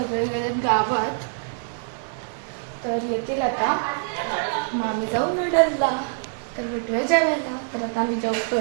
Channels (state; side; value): silent; left; 62 dB below the other